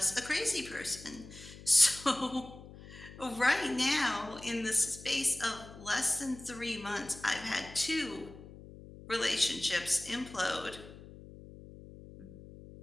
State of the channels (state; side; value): noise; left; hum, 17 dB below the sound